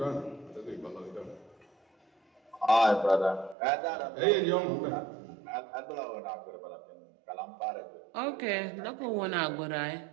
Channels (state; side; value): drops out; left; at 3.6 s